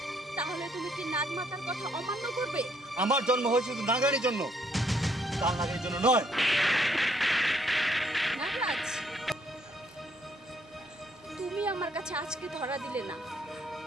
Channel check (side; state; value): both; normal; correlation 0.69